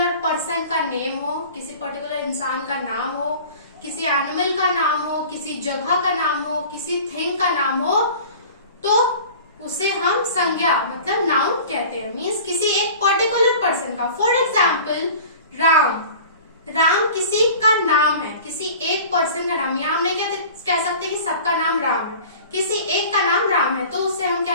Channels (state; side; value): inverted; both; correlation -0.42